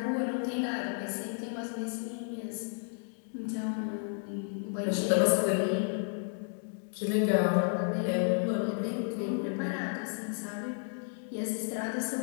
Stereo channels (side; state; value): right; silent; 56 dB below the other